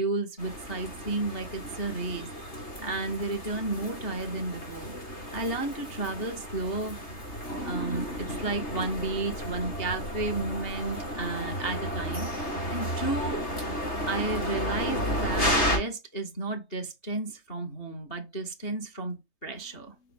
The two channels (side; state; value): right; late; 3.3 ms